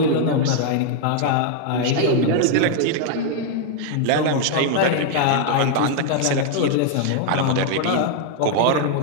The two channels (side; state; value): both; different; correlation 0.00